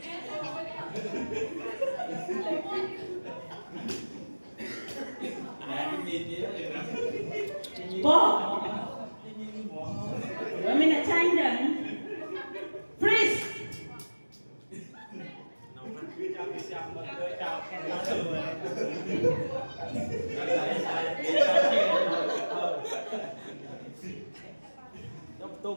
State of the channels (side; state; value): both; inverted; correlation -1.00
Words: bốn rồi mình đã tranh đừng freeze Tôi